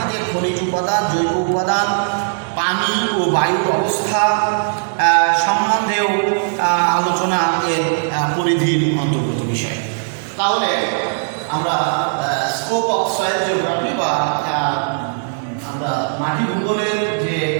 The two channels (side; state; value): left; silent; digital silence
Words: খনিজ উপাদান, জৈব উপাদান, পানি ও বায়ুর অবস্থা সম্বন্ধেও আলোচনা এর পরিধির অন্তর্গত বিষয়। তাহলে আমরা স্কোপ অফ সয়েল জিওগ্রাফি বা আমরা মাটি ভূগোলের যে